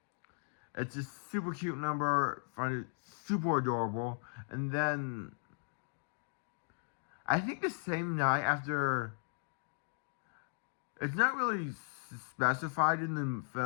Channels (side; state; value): right; silent; digital silence